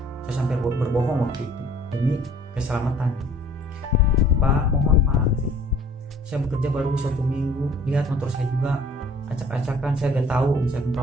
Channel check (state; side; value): normal; both; correlation 0.54